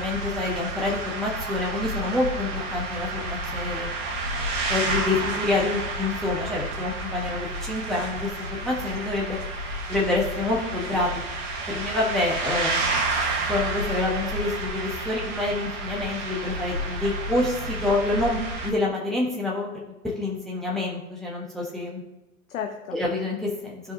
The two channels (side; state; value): both; normal; correlation 0.29